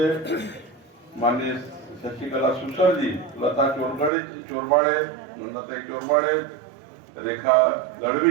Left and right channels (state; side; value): drops out; left; at 4.1 s